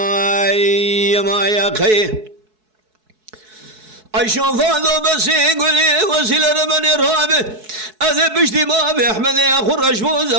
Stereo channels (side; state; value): left; late; 4.6 ms